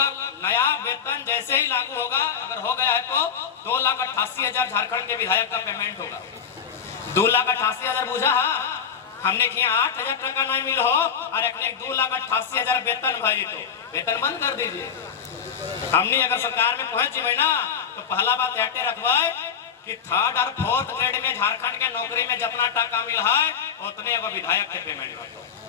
नया वेतन जैसे ही लागू होगा, अगर हो गया है तो 2,88,000 झारखंड के विधायक का पेमेंट होगा। 2,88,000 बुझा हमने किया 8,000 टका नहीं मिल हो और एक 2,88,000 वेतन भाई, तो वेतन बंद कर दीजिए। हमने अगर सरकार में पहुंच जाए ना तो पहला बात हटे रखवाए कि 3rd और 4th ग्रेड में झारखंड के नौकरी में जितना टका मिल है उतने एगो विधायक के पेमेंट हो।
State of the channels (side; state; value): right; quieter; 7.2 dB